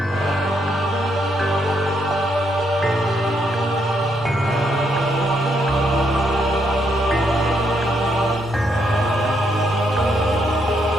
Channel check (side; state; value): both; normal; correlation 0.76